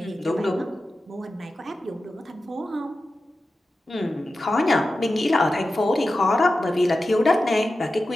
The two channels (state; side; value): normal; both; correlation 0.93